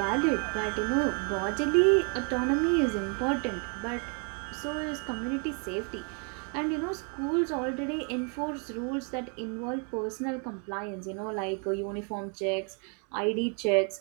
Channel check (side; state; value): left; quieter; 37.9 dB